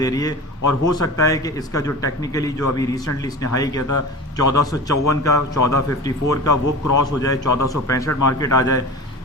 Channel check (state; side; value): normal; both; correlation 0.33